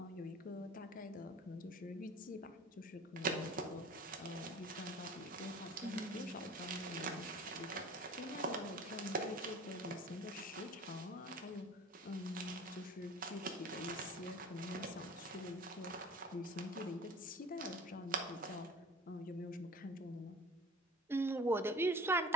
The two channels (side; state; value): both; normal; correlation 0.41